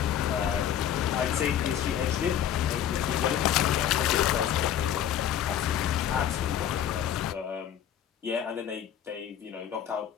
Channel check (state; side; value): quieter; right; 10.1 dB